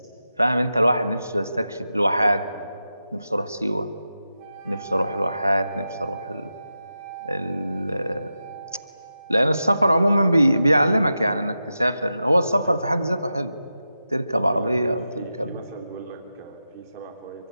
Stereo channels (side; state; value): both; inverted; correlation -0.90